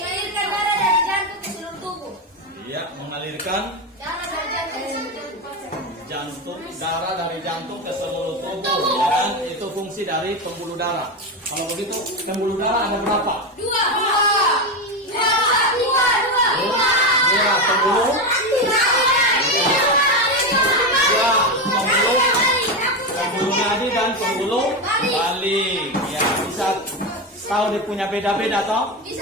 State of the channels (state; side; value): normal; both; correlation 0.14